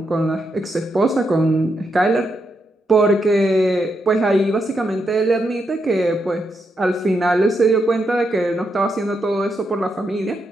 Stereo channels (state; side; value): normal; both; correlation 0.82